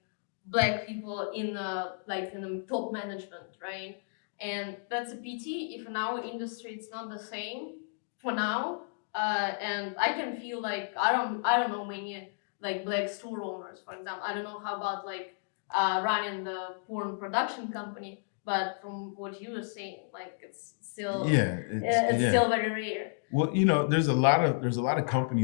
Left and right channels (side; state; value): right; silent; digital silence